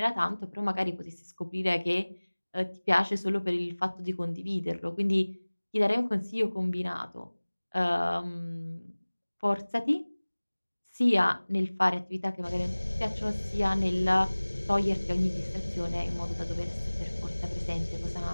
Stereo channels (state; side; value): inverted; both; correlation -1.00